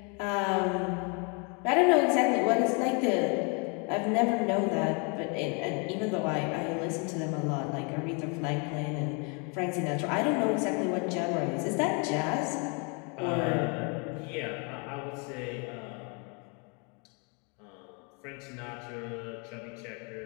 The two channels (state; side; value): quieter; right; 34.6 dB